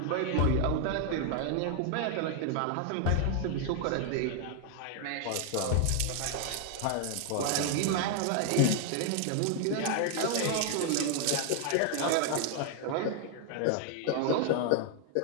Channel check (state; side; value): different; both; correlation 0.00